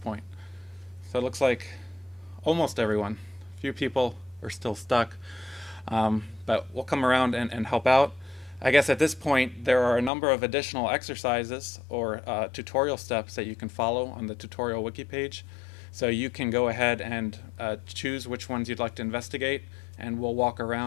So it looks like almost everyone. A few people are still stuck, but we'll come around and help out. I guess at this point there are a number of additional exercises or tutorial steps that you can follow on the tutorial wiki page. So you can go ahead and choose which ones you'd like to investigate, and we'll walk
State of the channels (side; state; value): right; drops out; at 10.1 s